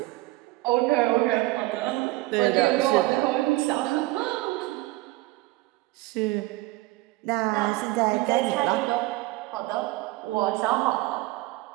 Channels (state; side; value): quieter; left; 19.8 dB